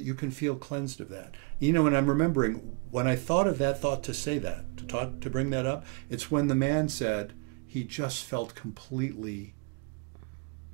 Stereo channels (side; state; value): left; quieter; 33.7 dB